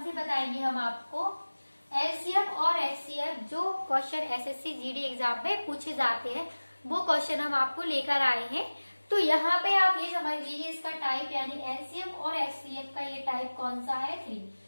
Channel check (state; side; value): inverted; both; correlation -1.00